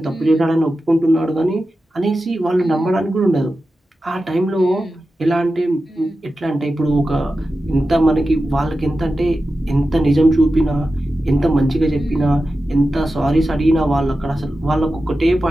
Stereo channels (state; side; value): normal; both; correlation 0.92